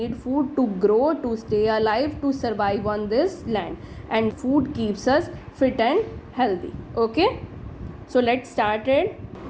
food to grow, to stay alive, to survive on this land. And food keeps us fit and healthy. Okay, so let's start it.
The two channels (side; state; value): both; identical; correlation 1.00